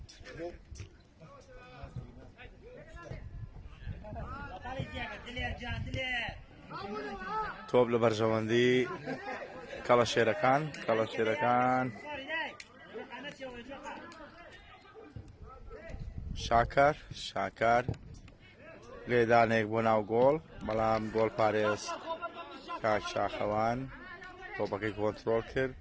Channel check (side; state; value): both; identical; correlation 1.00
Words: تۆپ لە بەرژەوەندی کەڵەشێرەکان شاکار لێدانێک بۆ ناو گۆڵ بەڵام گۆڵ پارێز کاک شاخەوان تۆپەکەی کۆنتڕۆڵ کرد